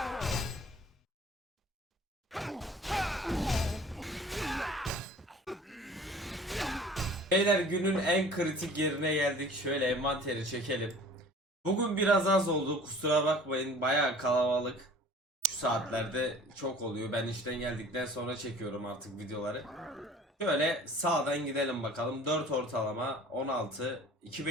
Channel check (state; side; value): normal; both; correlation 0.47